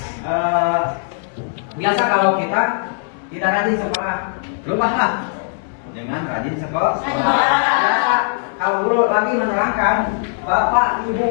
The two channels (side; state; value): right; silent; digital silence